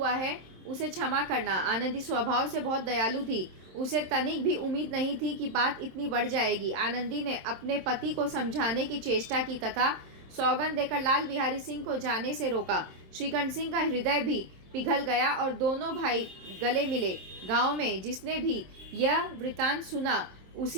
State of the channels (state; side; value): late; left; 27 ms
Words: है उसे क्षमा करना। आनंदी स्वभाव से बहुत दयालु थी। उसे तनिक भी उम्मीद नहीं थी कि बात इतनी बढ़ जाएगी। आनंदी ने अपने पति को समझाने की चेष्टा की तथा सौगंध देकर लाल बिहारी सिंह को जाने से रोका। श्रीकंठ सिंह का हृदय भी पिघल गया और दोनों भाई गले मिले। गांव में जिसने भी यह वृतांत सुना,